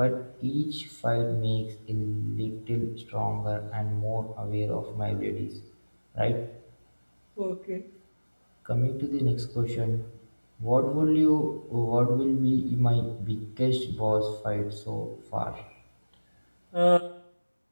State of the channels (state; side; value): inverted; both; correlation -1.00